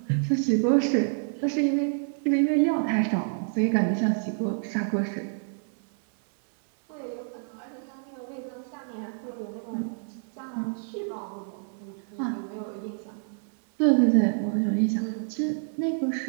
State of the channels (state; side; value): silent; left; 58 dB below the other